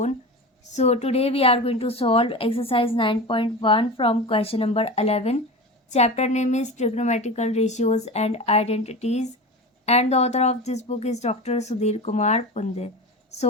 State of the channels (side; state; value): both; normal; correlation 0.29